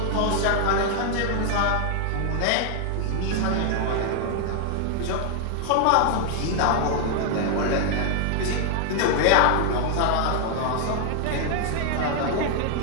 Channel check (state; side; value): different; both; correlation 0.00